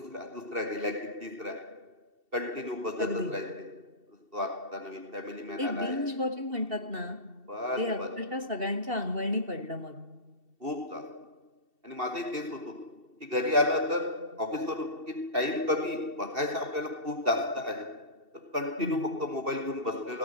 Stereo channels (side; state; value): left; late; 2.7 ms